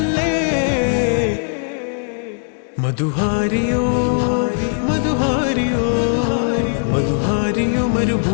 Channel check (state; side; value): silent; right; 67 dB below the other